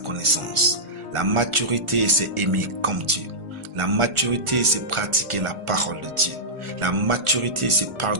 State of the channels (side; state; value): left; late; 1.4 ms